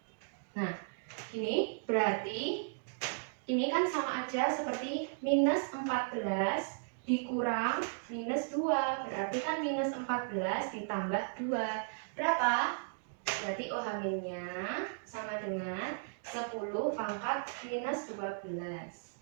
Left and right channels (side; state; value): left; silent; digital silence